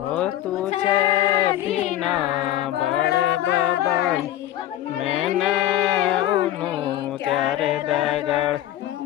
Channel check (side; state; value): right; quieter; 13.3 dB